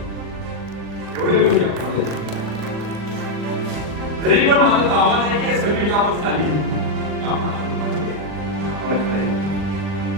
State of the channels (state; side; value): late; left; 40 ms